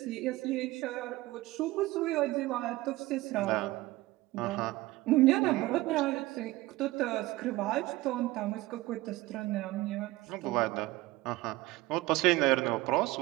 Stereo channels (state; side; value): quieter; left; 18.9 dB